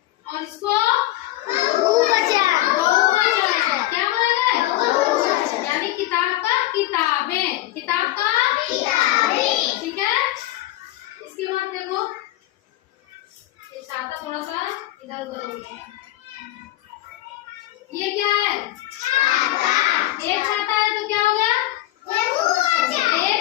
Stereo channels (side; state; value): right; quieter; 16.1 dB